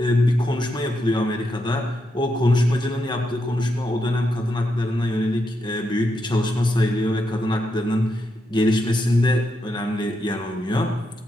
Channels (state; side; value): normal; both; correlation 0.82